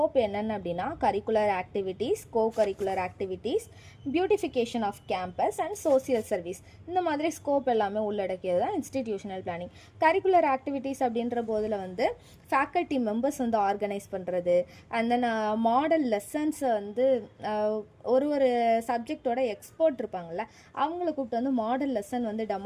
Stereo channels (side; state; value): both; identical; correlation 1.00